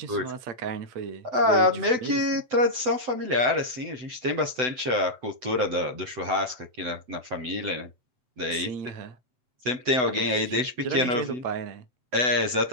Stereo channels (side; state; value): left; late; 7.9 ms